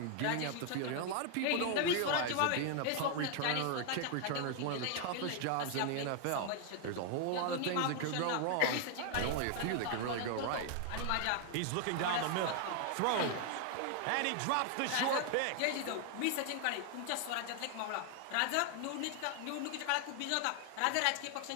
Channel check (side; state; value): both; different; correlation 0.00